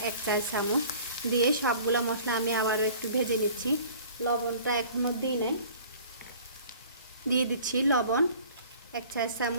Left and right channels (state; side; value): inverted; both; correlation -0.48